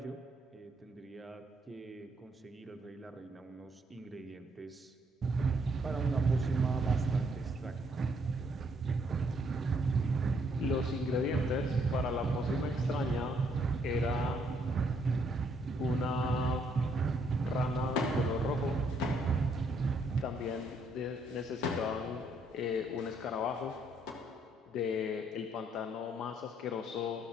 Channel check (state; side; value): normal; both; correlation 0.70